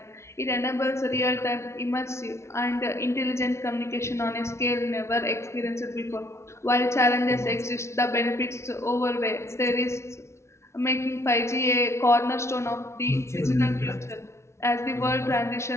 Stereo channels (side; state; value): right; late; 0.13 ms